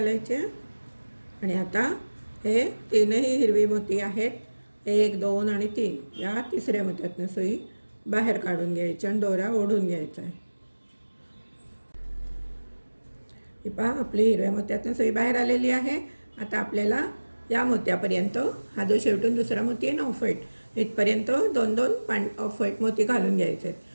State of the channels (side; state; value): both; inverted; correlation -1.00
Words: आणि आता हे 3ही हिरवी मोती आहेत, 1, 2 आणि 3. या तिसऱ्या मोत्यातनं सुई बाहेर काढून घ्यायची आणि दोरा ओढून घ्यायचा आहे. ही पहा, आपली हिरव्या मोत्यातनं सुई बाहेर आलेली आहे. आता आपल्याला या मोत्यापर्यंत, हा जो शेवटून दुसरा मोती आहे ना ऑफ व्हाईट, इथपर्यंत 2-2 ऑफ व्हाईट मोती घालून घ्यायचे